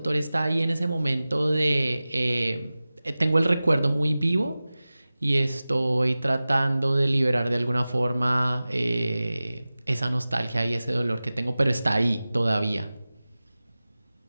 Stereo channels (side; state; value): both; inverted; correlation -0.97